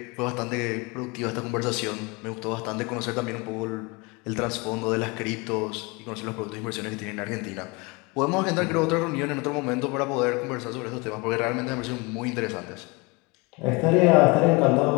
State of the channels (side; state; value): right; quieter; 26.9 dB